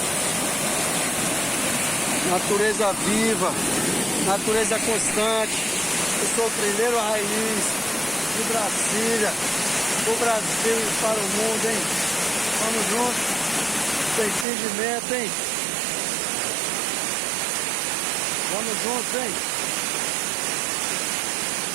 Natureza viva, natureza constante. Eu sou trilheiro raiz de Brasília, do Brasil e para o mundo, hein? Vamos juntos, sem fingimento, hein? Vamos juntos, hein?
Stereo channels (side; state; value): left; drops out; at 14.5 s